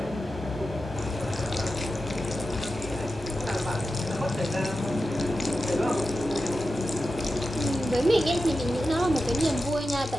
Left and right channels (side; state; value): both; normal; correlation 0.92